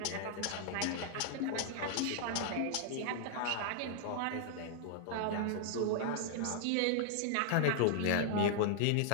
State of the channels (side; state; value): both; different; correlation -0.01